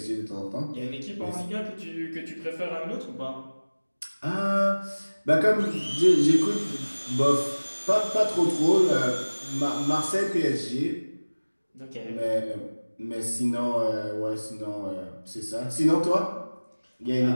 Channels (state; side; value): inverted; both; correlation -1.00